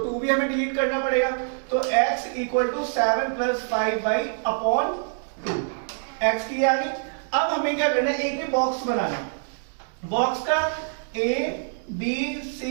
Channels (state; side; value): silent; left; digital silence